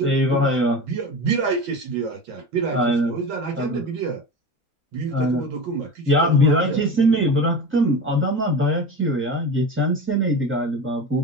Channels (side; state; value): both; normal; correlation 0.29